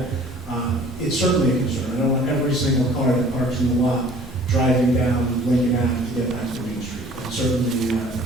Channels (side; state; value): both; normal; correlation 0.51